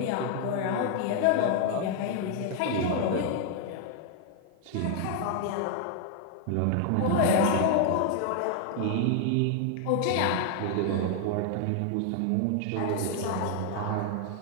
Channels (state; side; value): different; both; correlation 0.00